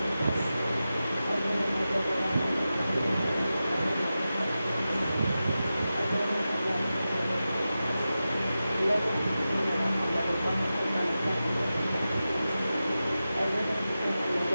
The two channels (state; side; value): inverted; both; correlation -0.93